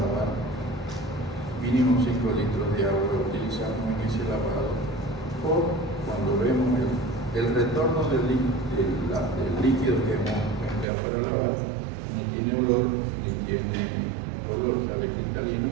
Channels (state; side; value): drops out; left; at 10.9 s